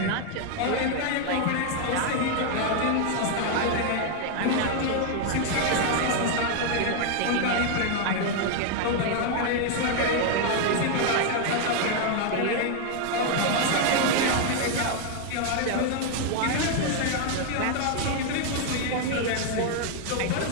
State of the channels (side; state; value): both; different; correlation 0.00